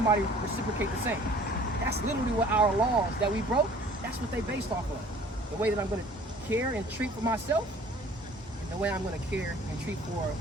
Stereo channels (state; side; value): normal; both; correlation 0.51